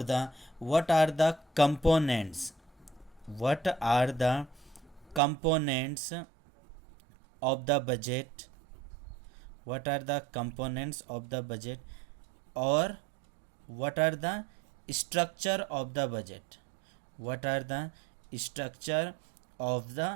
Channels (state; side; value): drops out; left; at 5.2 s